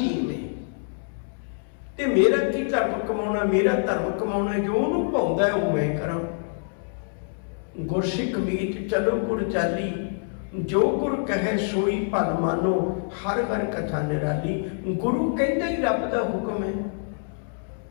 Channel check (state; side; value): silent; right; digital silence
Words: में। ते मेरा की धर्म कमाना, मेरा धर्म कमाना, जो उन्होंने भाउंदा है वो मैं करा। गुरसिख मीत चलो गुर चाली, जो गुर कहे सोई भल मानो, हर हर कथा निराली। गुरु कहता ही रब का हुक्म है,